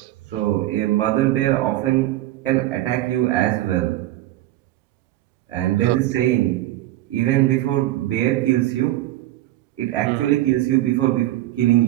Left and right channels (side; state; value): left; quieter; 15.3 dB